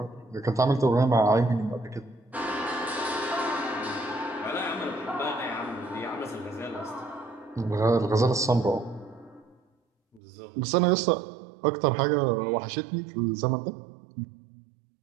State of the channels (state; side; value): drops out; left; at 10.2 s